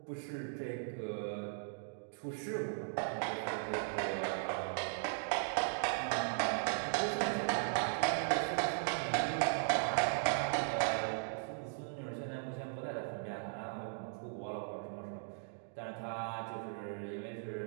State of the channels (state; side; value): silent; left; digital silence